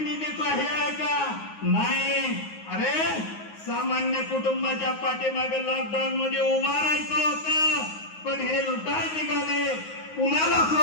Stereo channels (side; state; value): right; late; 9.5 ms